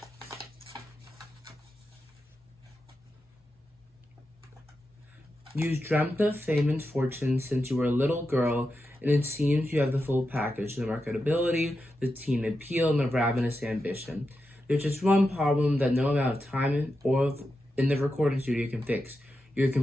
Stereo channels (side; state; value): both; normal; correlation 0.89